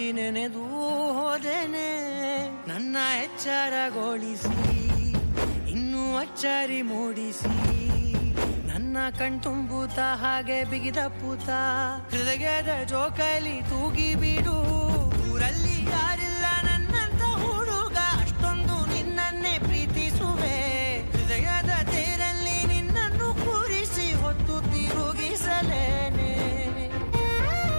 ನೆನೆದು ಹೋದೆನೆ. ನನ್ನ ಎಚ್ಚರಗೊಳಿಸಿ ಇನ್ನೂ ಅಚ್ಚರಿ ಮೂಡಿಸಿ, ನನ್ನ ಕಣ್ತುಂಬುತ್ತ ಹಾಗೆ ಬಿಗಿದ ಪೂತ ಹೃದಯದ ಜೋಕಾಲಿ ತೂಗಿ ಬಿಡು. ಊರಲ್ಲಿ ಯಾರಿಲ್ಲ ನನ್ನಂತ ಹುಡುಗ, ಅಷ್ಟೊಂದು ನಿನ್ನನ್ನೇ ಪ್ರೀತಿಸುವೆ. ಹೃದಯದ ತೇರಲ್ಲಿ ನಿನ್ನನ್ನು ಕೂರಿಸಿ ಹೊತ್ತು ತಿರುಗಿಸಲೇನೆ.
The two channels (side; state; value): both; inverted; correlation -1.00